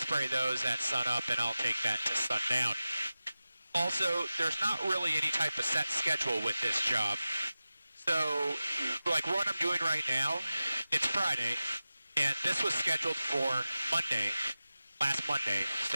those at sunup, and I'll take that to sundown. Also, there's not really any type of set schedule with this job. So, like what I'm doing right now, it's Friday, and this was scheduled for Monday, last Monday,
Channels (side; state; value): both; inverted; correlation -0.95